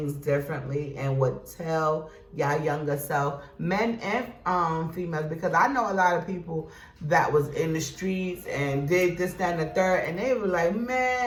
differently and would tell y'all younger self, men and females, because I know a lot of people that was in the streets and did this, that, and the third, and they were like,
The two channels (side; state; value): both; identical; correlation 1.00